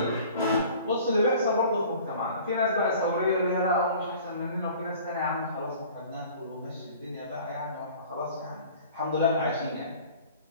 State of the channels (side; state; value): both; inverted; correlation -0.47